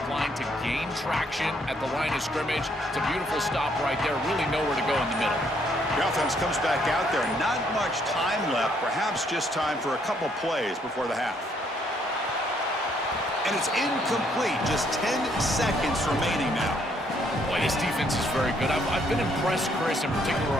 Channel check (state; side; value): normal; both; correlation 0.69